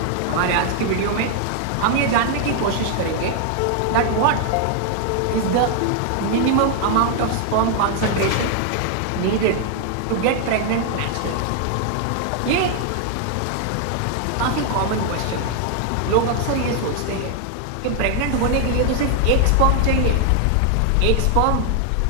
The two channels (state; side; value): different; both; correlation 0.00